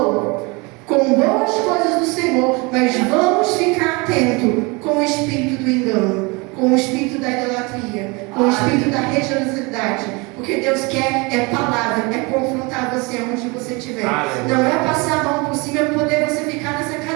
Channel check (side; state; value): left; quieter; 27.4 dB